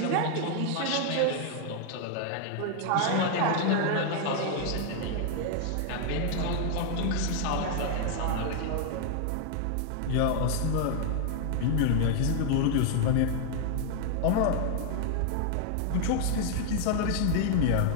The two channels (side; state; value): both; different; correlation 0.00